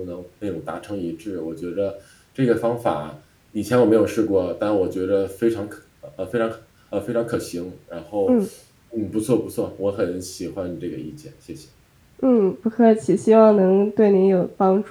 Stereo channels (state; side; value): identical; both; correlation 1.00